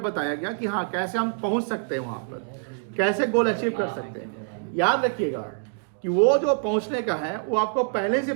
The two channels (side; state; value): left; silent; digital silence